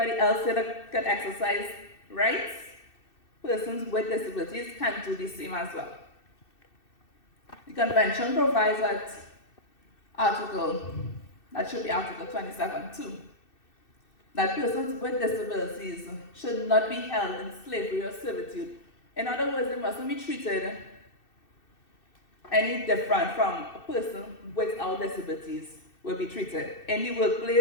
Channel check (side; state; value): right; late; 2.6 ms